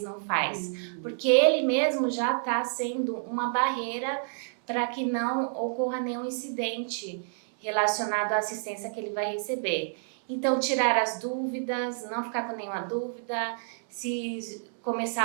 não faz? Porque ele mesmo já está sendo uma barreira para que não ocorra nenhum incidente relacionado à assistência que ele vai receber. Então, tirar as dúvidas, não ficar com nenhuma dúvida. Se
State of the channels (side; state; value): left; silent; 59 dB below the other